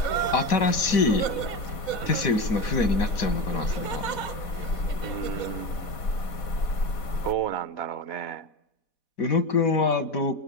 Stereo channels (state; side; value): late; right; 4.1 ms